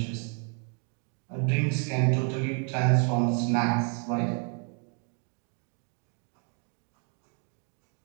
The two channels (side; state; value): left; quieter; 39.9 dB